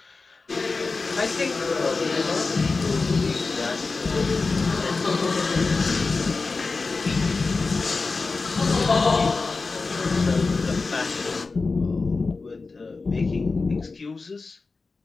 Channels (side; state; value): right; quieter; 4.0 dB